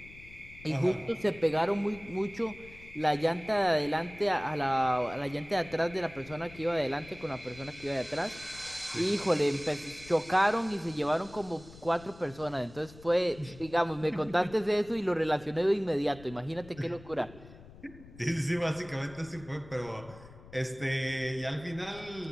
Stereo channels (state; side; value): noise; left; rumble, 19 dB below the sound